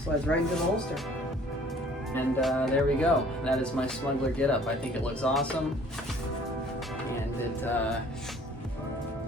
slides right into the holster. And there we go. That is my smuggler getup. I think it looks awesome. And it, I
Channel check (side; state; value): both; normal; correlation 0.54